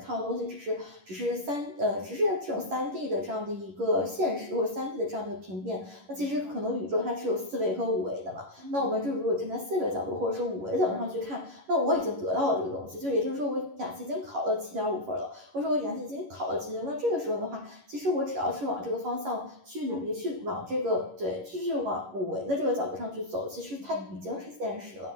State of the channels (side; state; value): left; late; 11 ms